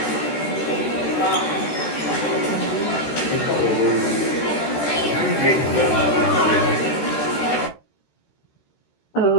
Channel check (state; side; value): late; right; 14 ms